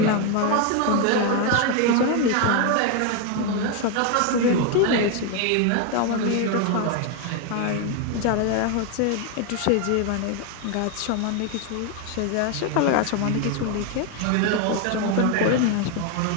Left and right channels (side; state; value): both; different; correlation 0.01